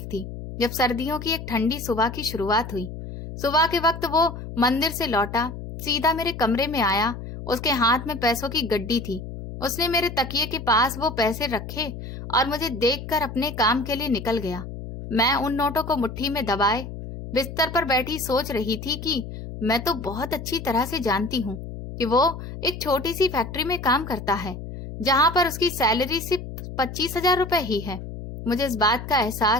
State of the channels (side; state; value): left; noise; hum, 9 dB below the sound